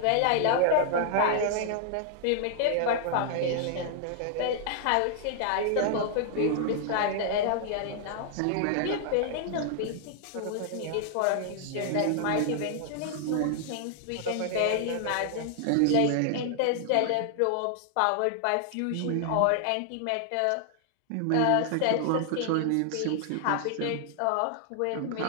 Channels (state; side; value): different; both; correlation 0.00